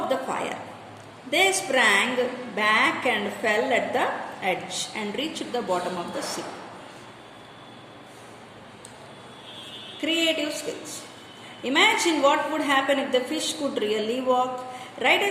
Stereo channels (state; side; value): identical; both; correlation 1.00